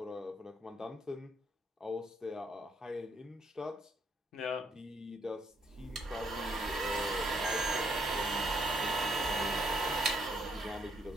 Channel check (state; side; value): normal; both; correlation 0.72